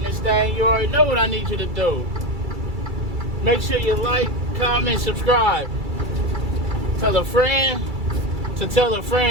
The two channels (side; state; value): left; late; 2.3 ms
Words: this thing, you already know what I need you to do. Make sure you like, comment, subscribe. Tell a friend to tell a